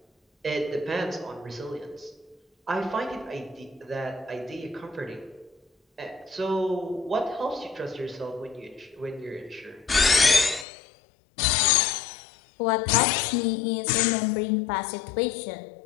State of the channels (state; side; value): drops out; right; at 10.7 s